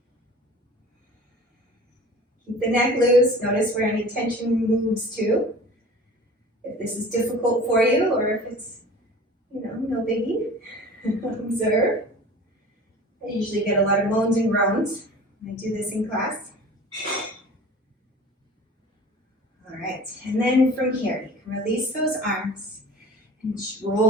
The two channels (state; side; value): normal; both; correlation 0.41